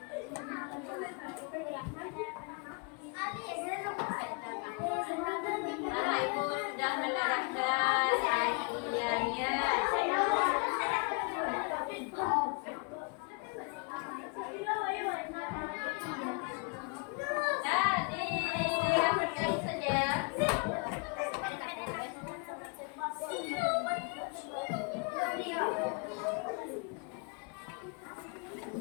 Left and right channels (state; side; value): quieter; right; 33.2 dB